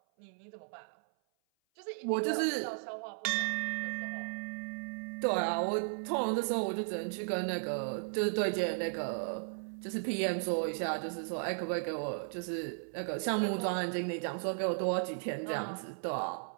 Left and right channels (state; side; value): silent; left; 54 dB below the other